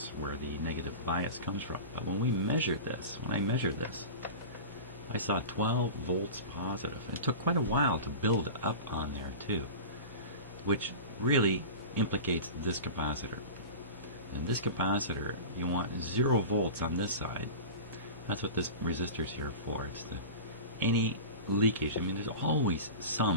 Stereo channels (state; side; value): inverted; both; correlation -0.32